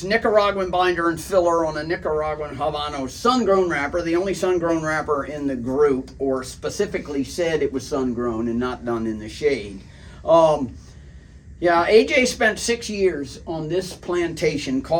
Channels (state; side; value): identical; both; correlation 1.00